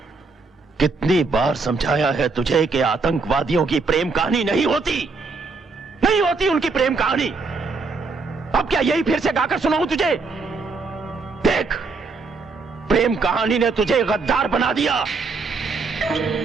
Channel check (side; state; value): left; quieter; 4.2 dB